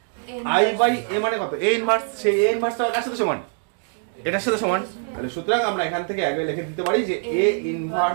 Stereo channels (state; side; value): silent; left; 56 dB below the other